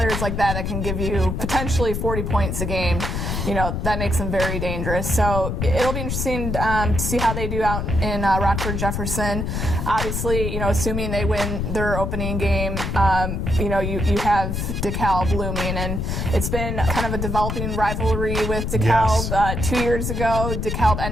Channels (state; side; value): noise; left; rumble, 2 dB below the sound